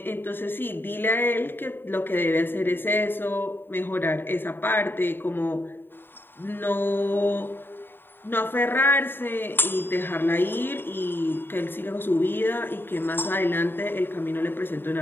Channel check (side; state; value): right; late; 0.099 ms